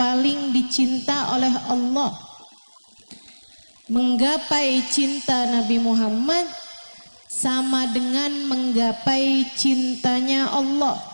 dicinta oleh Allah. Menggapai cinta Nabi Muhammad sama dengan menggapai cintanya Allah.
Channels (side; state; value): both; inverted; correlation -1.00